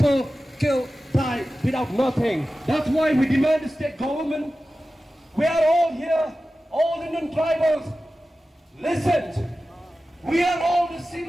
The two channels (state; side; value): normal; both; correlation 0.95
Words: die without nothing. That's why we demand the state government. We are all here, all Indian tribals. Listen, we are all the